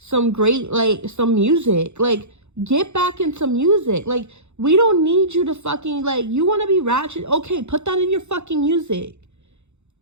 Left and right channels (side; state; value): left; late; 0.82 ms